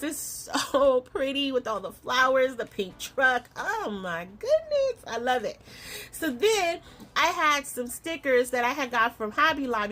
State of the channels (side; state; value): both; identical; correlation 1.00